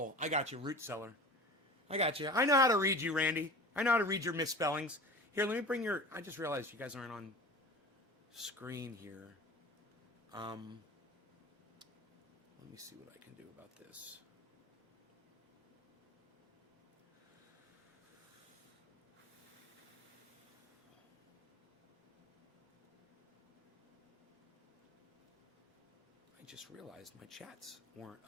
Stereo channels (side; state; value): both; normal; correlation 0.37